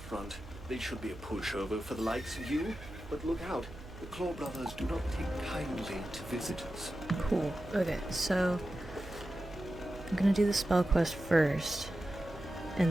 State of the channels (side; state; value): right; noise; hum, 16 dB below the sound